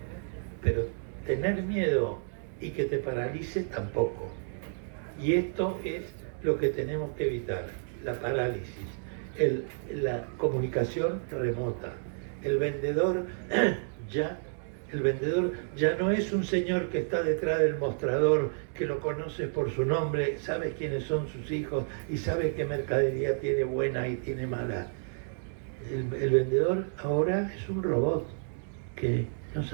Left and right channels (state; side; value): silent; left; digital silence